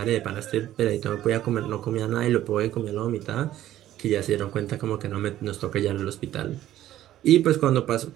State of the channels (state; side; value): quieter; left; 13.2 dB